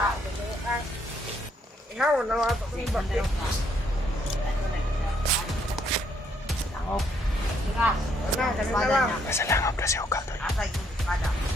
Ikaw na ato ko ni bakit. Langop. Tigas. Ano, kanina lang. Nasa langop na si Ukal doon. Asa yung espada.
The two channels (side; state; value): both; normal; correlation 0.71